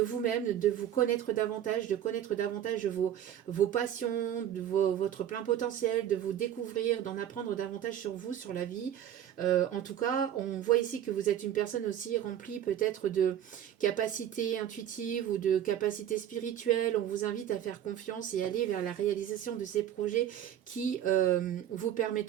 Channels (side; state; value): left; quieter; 10.5 dB